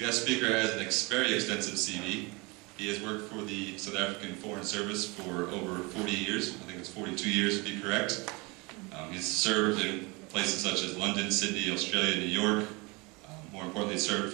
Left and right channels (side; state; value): left; quieter; 26.8 dB